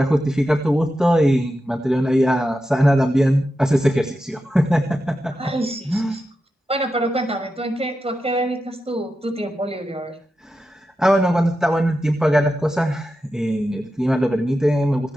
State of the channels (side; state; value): both; normal; correlation 0.90